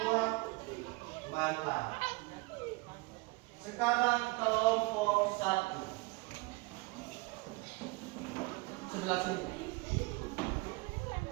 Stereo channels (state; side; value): quieter; left; 25.1 dB